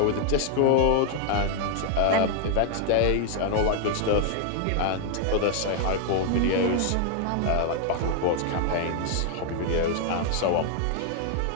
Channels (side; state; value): both; different; correlation 0.00